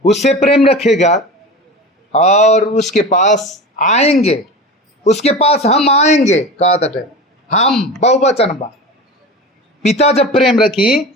उससे प्रेम रखेगा और उसके पास आएंगे, उसके पास हम आएंगे। कहा तटे हम बहुवचन बा, पिता जब प्रेम रखी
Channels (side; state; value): both; normal; correlation 0.30